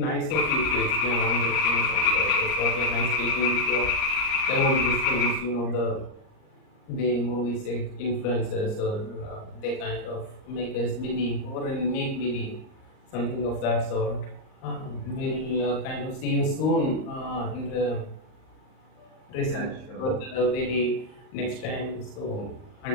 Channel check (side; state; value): right; late; 38 ms